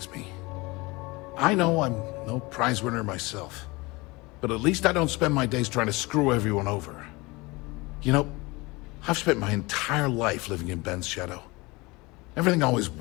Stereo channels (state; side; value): quieter; right; 23.9 dB